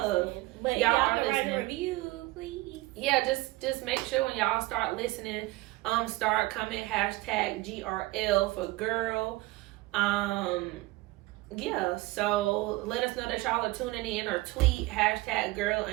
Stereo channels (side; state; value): left; quieter; 20.3 dB